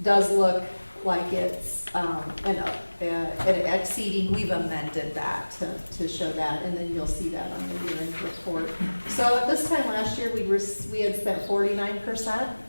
does look like it's exceeding, we've amended that to show that, and then you'll see that on the year-end report. So at this time last year, we had spent 49%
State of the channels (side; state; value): both; inverted; correlation -1.00